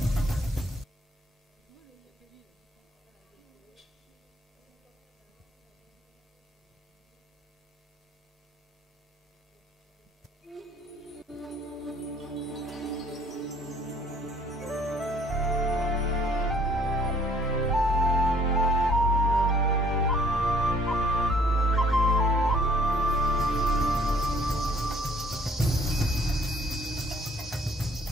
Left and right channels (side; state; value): both; normal; correlation 0.59